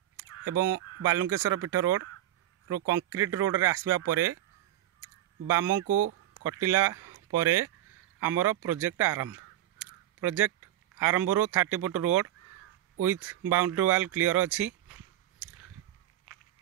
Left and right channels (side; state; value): left; quieter; 13.4 dB